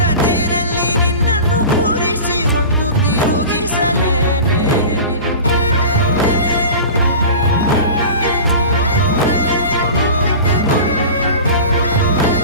ತೇರಲ್ಲಿ ನಿನ್ನನ್ನು ಕೂರಿಸಿ ಹೊತ್ತು ತಿರುಗಿಸಲೇನೆ.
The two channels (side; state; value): both; inverted; correlation -0.34